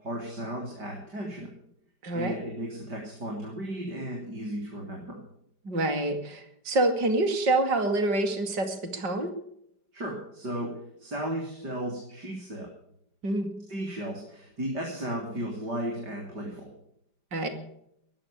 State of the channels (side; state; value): left; late; 5.0 ms